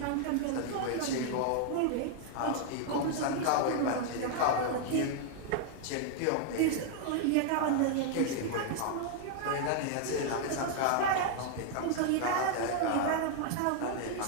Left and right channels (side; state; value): both; different; correlation 0.00